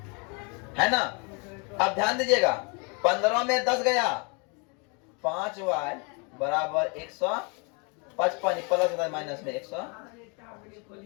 है ना? अब ध्यान दीजिएगा, 15 में 10 गया, 5y बराबर 155 प्लस माइनस में 100।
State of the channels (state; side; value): quieter; right; 33.6 dB